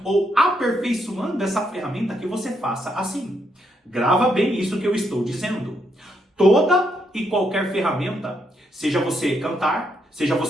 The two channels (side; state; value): both; normal; correlation 0.77